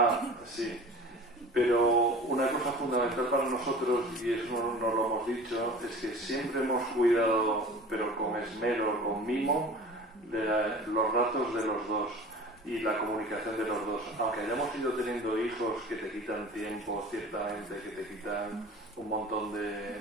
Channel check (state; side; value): normal; both; correlation 0.40